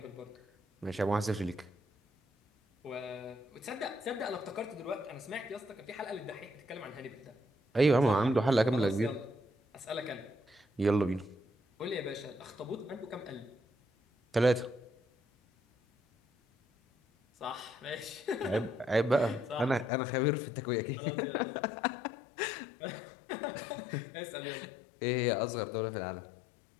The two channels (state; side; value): drops out; right; at 19.9 s